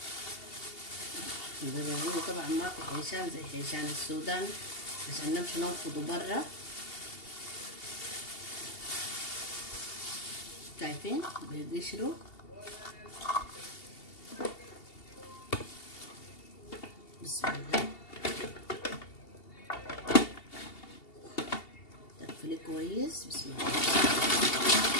طبعا ما في حيشان زي حيشان السودان عشان نمشي ننفضه برا. شايفين بيقشروا. بسم الله، تقفلي كويس. بسم الله.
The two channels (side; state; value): right; late; 2.8 ms